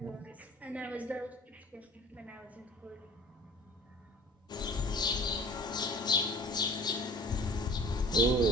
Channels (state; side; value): normal; both; correlation 0.45